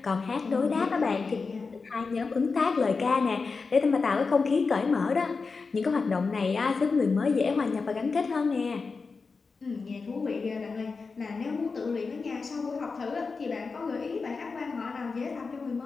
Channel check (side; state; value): right; quieter; 4.5 dB